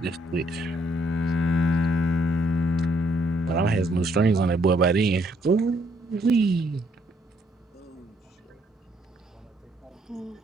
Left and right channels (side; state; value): both; normal; correlation 0.68